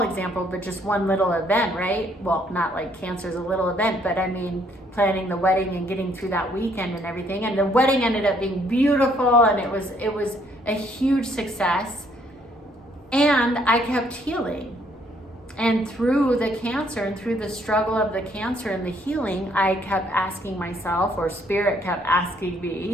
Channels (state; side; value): normal; both; correlation 0.67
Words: example, but just one little event, right? Well, not like cancer is a little event, but I mean, planning the wedding and getting through that weekend and everything. And the wedding ended up being beautiful, and it was a huge success. And I kept healing. And through the cancer and through the struggle of the cancer and the healing, I kept asking myself, or Spirit kept asking